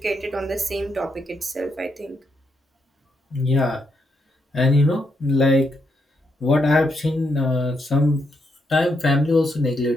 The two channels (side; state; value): both; normal; correlation 0.79